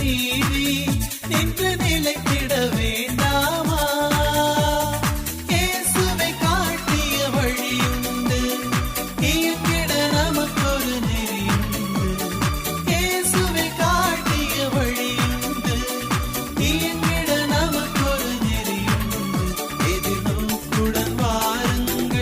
நீதி என்று நிலைத்திட வேண்டாமா? இயேசுவை காட்டிய வழியுண்டு, இயங்கிட நமக்கொரு நெறியுண்டு. இயேசுவை காட்டிய வழியுண்டு, இயங்கிட நமக்கொரு நெறியுண்டு. எதிர்நோக்குடன்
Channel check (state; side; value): identical; both; correlation 1.00